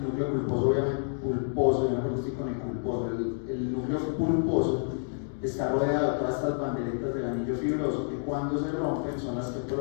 núcleo pulposo, obviamente, pulposo, yo no estoy con el pulposo. El núcleo pulposo está rodeado de todas estas banderitas del anillo fibroso que cuando se rompen son las que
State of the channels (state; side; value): silent; right; digital silence